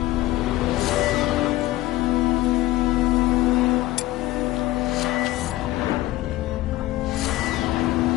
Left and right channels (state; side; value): quieter; right; 16.9 dB